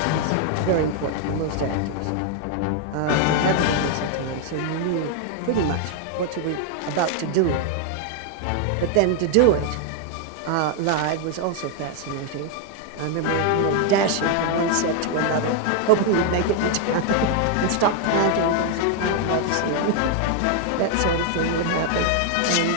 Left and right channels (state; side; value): different; both; correlation 0.00